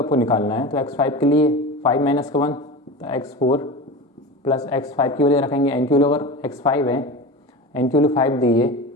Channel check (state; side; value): normal; both; correlation 0.29